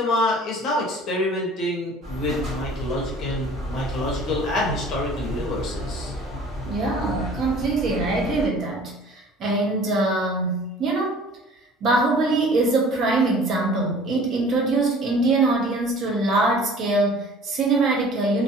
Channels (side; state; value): both; normal; correlation 0.48